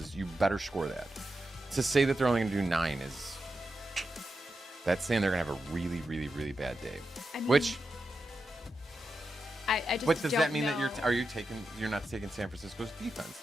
you better score that. To say that they're only going to do 9 is that's saying they're going to have a really, really, really bad day. I mean, which I just what does don't that mean know. that you're not taking San Francisco's defense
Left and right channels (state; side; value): normal; both; correlation 0.89